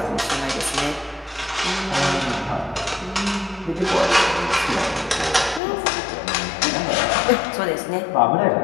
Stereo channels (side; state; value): right; drops out; at 5.6 s